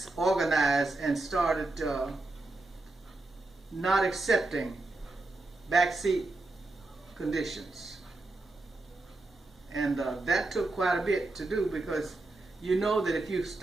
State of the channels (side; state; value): left; quieter; 3.0 dB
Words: organize and started not accepting backseat conditions. And that took quite a bit to do, because you know that if you